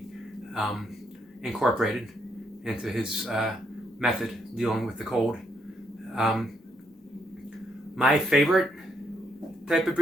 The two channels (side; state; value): both; normal; correlation 0.75